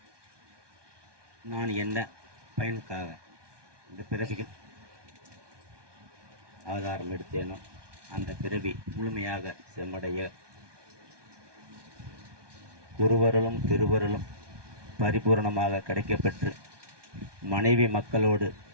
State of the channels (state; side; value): late; left; 1.2 ms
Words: நான் என்ன பயனுக்காக இந்த பிறவியில் ஆதாரம் எடுத்தேனோ அந்த பிறவி முழுமையாக செம்மடைய குருவருளும் திருவருளும் பரிபூரணமாக கிடைக்கப்பெற்று மனைவி மக்களோடு